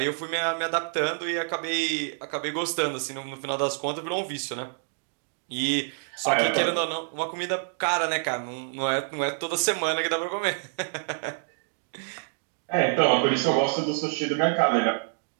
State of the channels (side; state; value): left; silent; 60 dB below the other